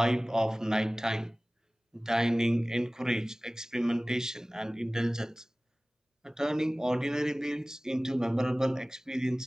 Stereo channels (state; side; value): normal; both; correlation 0.98